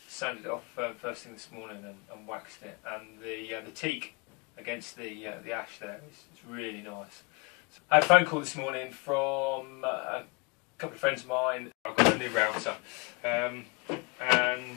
Sanded it off first thing this morning and waxed it, and the teak against the ash there is really nice. So I had a phone call this morning from a couple of friends of mine. I've got a new router, and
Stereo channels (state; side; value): quieter; right; 30.0 dB